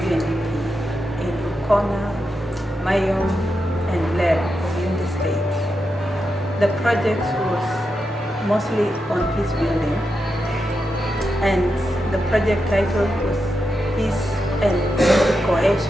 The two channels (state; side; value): normal; both; correlation 0.87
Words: Undp in Rubkona, Mayom, and Blair of Unity State. The project was mostly on peace building, and the project title was Peace and